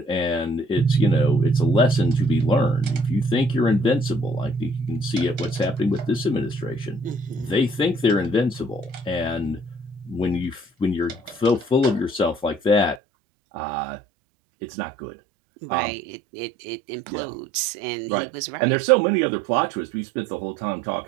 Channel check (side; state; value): left; drops out; at 13.0 s